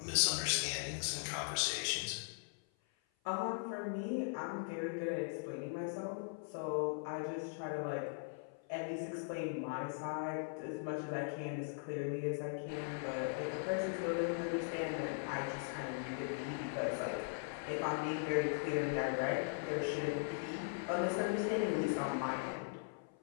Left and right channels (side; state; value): right; silent; 51 dB below the other